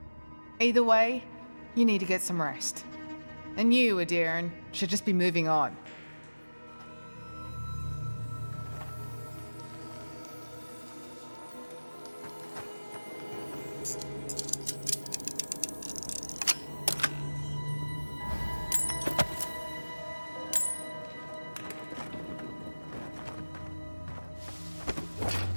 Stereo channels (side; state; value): both; inverted; correlation -1.00